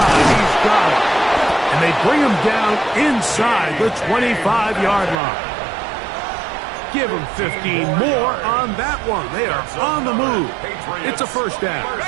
He's got it. And they bring him down inside the 25-yard line. Give him 15 more on that one. They are on the move. It's a first down. A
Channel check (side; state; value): left; drops out; at 5.2 s